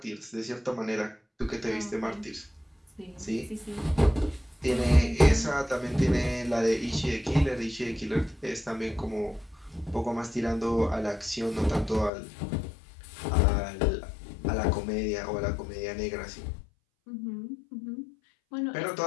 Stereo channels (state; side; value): drops out; right; at 12.1 s